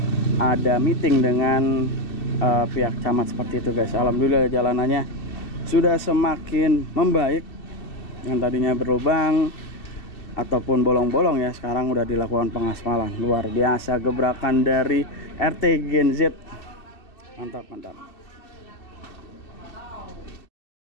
ada meeting dengan pihak camat seperti itu guys. Alhamdulillah jalanannya sudah semakin membaik. Yang tadinya berlubang ataupun bolong-bolong ya, sekarang udah dilakukan pengaspalan. Luar biasa gebrakan dari RT Gen Z. Mantap.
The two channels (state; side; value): late; right; 2.6 ms